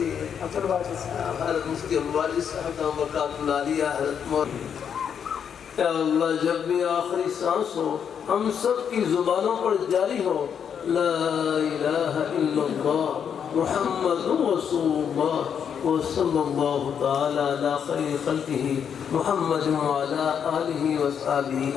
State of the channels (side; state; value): right; quieter; 7.8 dB